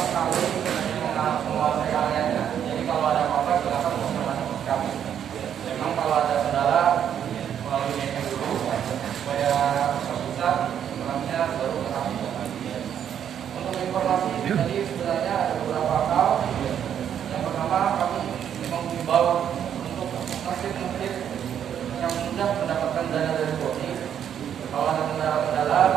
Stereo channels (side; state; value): left; quieter; 9.2 dB